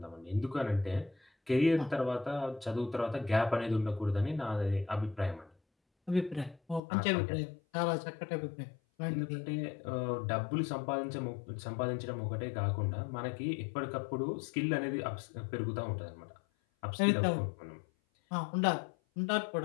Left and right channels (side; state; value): right; drops out; at 6.8 s